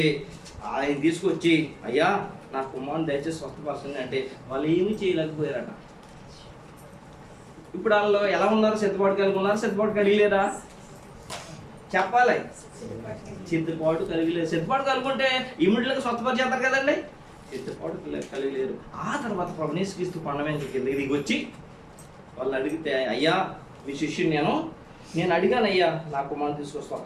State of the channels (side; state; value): both; identical; correlation 1.00